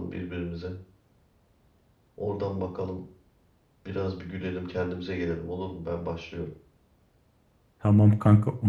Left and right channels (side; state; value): both; identical; correlation 1.00